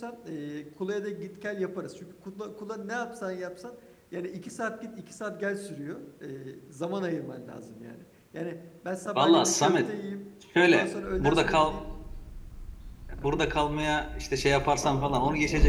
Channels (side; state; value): both; identical; correlation 1.00